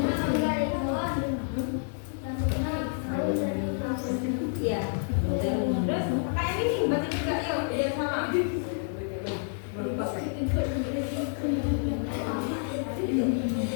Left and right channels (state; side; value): silent; right; digital silence